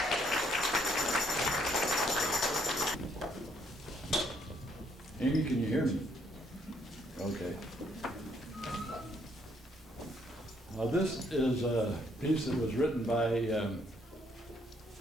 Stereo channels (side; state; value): both; normal; correlation 0.69